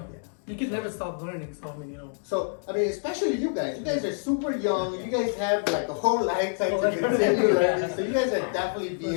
Yeah. You can never stop learning. So I mean, you know. So, I mean, especially you guys. You guys are super young. You guys have like a whole lifetime to Oh, that's continue right. learning. So you guys are definitely For being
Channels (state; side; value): silent; right; digital silence